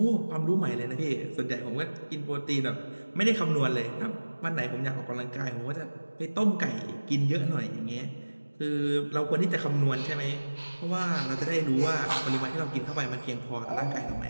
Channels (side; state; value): both; inverted; correlation -1.00